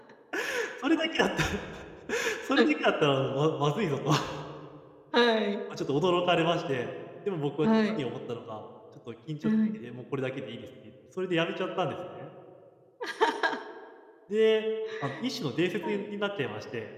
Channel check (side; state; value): both; identical; correlation 1.00